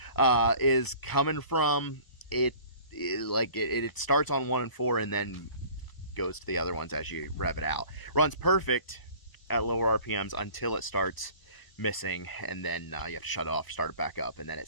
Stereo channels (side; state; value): right; late; 1.0 ms